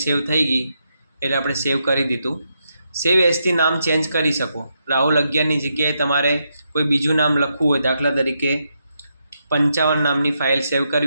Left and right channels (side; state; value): both; inverted; correlation -0.82